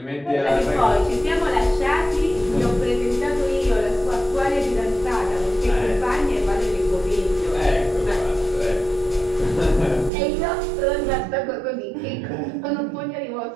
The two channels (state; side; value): drops out; left; at 10.1 s